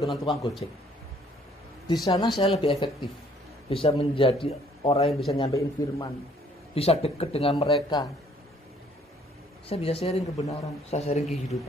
dengan tukang gojek. Di sana saya lebih efektif. Bisa menjadi orang yang bisa nyampein firman. Bisa dekat dengan mereka. Saya bisa sharing kebenaran, saya sharing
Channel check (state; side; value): normal; both; correlation 0.61